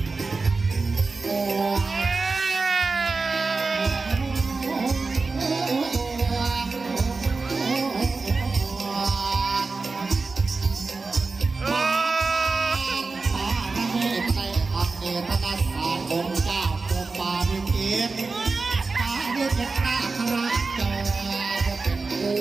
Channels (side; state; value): left; quieter; 4.0 dB